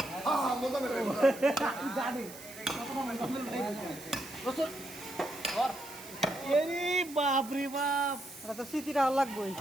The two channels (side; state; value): right; noise; hiss, 16 dB below the sound